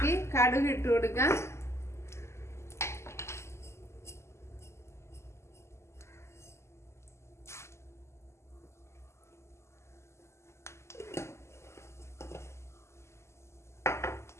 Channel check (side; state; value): right; late; 0.13 ms